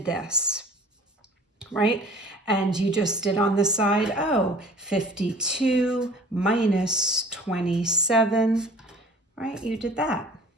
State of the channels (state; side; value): normal; both; correlation 0.48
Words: this, right? And you just did on the side, 52 minus 27, right? You did that.